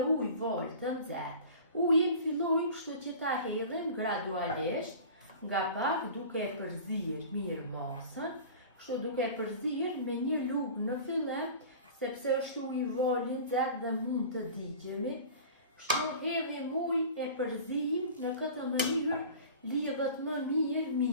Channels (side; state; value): both; inverted; correlation -0.39